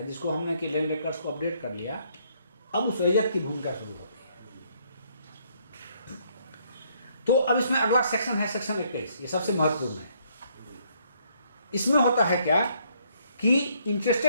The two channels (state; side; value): inverted; both; correlation -0.68